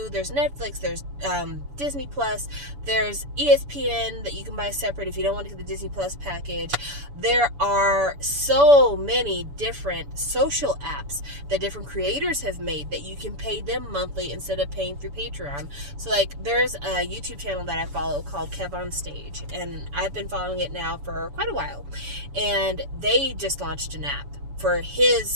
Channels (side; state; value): left; late; 7.0 ms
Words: there's Netflix, there's Disney Plus, there's ESPN that you can buy separate if you don't want to get the Disney Plus package. There are so many different social apps that different creators have made that you can pay them monthly instead of paying through Patreon. So, like, there's a YouTube channel that I follow called Kev on Stage, and I've been following it now for quite a while. And they just launched an app for